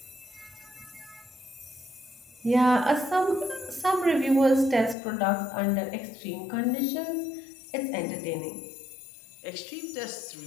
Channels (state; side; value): drops out; right; at 5.0 s